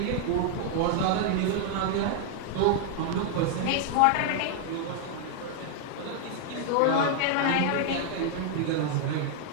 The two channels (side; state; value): both; different; correlation 0.00